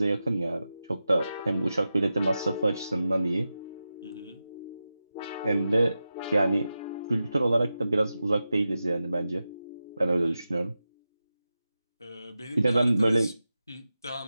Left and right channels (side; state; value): both; inverted; correlation -0.92